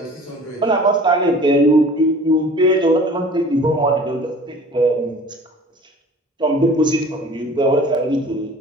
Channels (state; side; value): normal; both; correlation 0.45